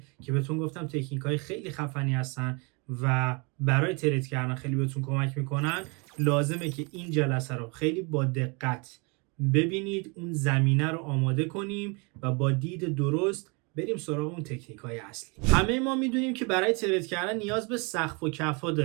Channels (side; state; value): left; quieter; 31.0 dB